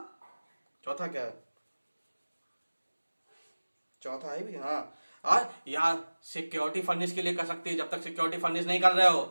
क्या है, चौथा है भी, हाँ। और या सिक्योरिटी फर्निश के लिए कर सकती है, जब तक सिक्योरिटी फर्निश नहीं कर रहे हो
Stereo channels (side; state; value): both; inverted; correlation -1.00